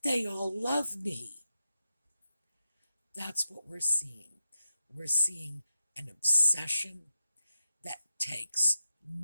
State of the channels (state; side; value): inverted; both; correlation -0.86